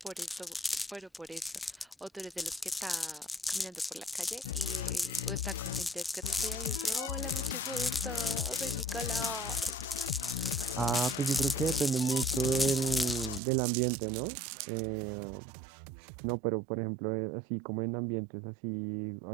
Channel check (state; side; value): drops out; left; at 13.4 s